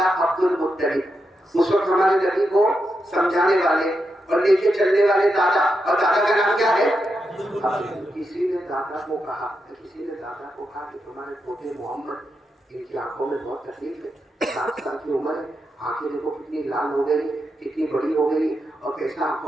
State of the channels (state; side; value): normal; both; correlation 0.86